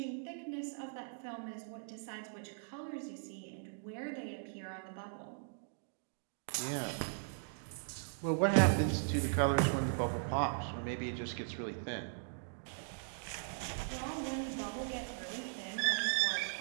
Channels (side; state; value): left; silent; digital silence